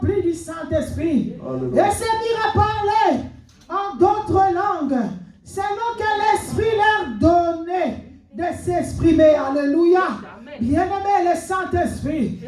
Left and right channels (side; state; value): both; identical; correlation 1.00